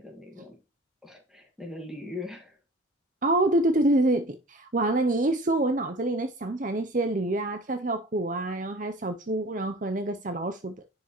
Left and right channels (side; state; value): both; normal; correlation 0.43